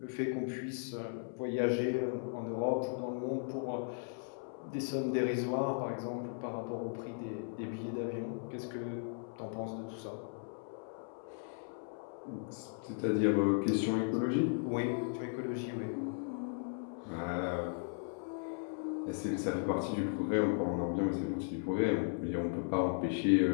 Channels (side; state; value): right; silent; 53 dB below the other